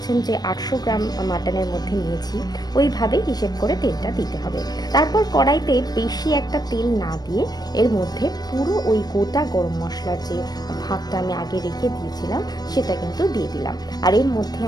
যে 800 গ্রাম মাটনের মধ্যে নিয়েছি, ওইভাবে হিসেব করে তেলটা দিতে হবে। তারপর কড়াইতে বেশি একটা তেল না দিয়ে এর মধ্যে পুরো ওই গোটা গরম মশলার যে ভাগটা আমি আগে রেখে দিয়েছিলাম সেটা কিন্তু দিয়ে দিলাম। আর এর মধ্যে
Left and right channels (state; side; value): late; right; 0.19 ms